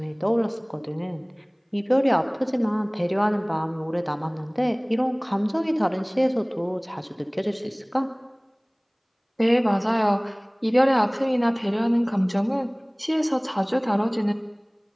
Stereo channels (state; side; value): identical; both; correlation 1.00